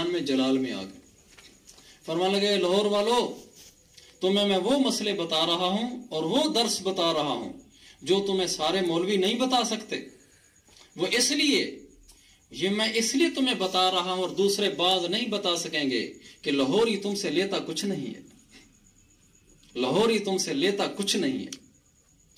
میں جلال میں آ گئے، فرمانے لگے لاہور والو تمہیں میں وہ مسئلے بتا رہا ہوں اور وہ درس بتا رہا ہوں جو تمہیں سارے مولوی نہیں بتا سکتے، وہ اس لیے یہ میں اس لیے تمہیں بتا رہا ہوں اور دوسرے بعض نہیں بتا سکیں گے کہ لاہوری تم سے لیتا کچھ نہیں ہے، لاہوری تم سے لیتا کچھ نہیں ہے۔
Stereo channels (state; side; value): identical; both; correlation 1.00